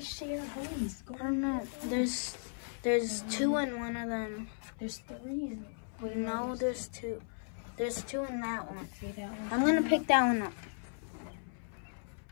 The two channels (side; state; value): right; silent; 54 dB below the other